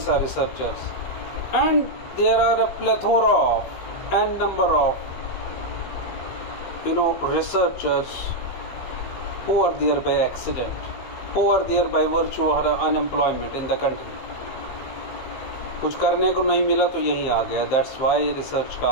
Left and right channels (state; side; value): late; right; 15 ms